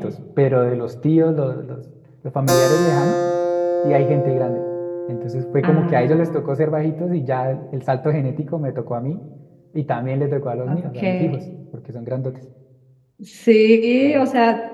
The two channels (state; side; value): identical; both; correlation 1.00